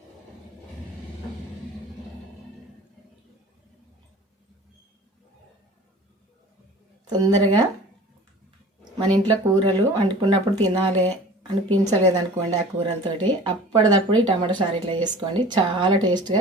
తొందరగా మన ఇంట్లో కూరలు వండుకున్నప్పుడు తినాలి అనిపించలేదనుకోండి ఆ కూరలతోటి, అప్పటిదప్పుడు ఈ టమాటా చారు ఇట్లా చేసుకోండి. చాలా టేస్ట్గా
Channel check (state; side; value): normal; both; correlation 0.43